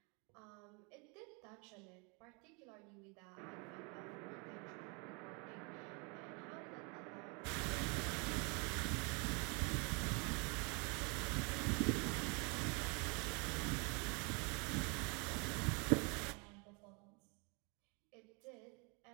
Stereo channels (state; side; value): quieter; left; 32.3 dB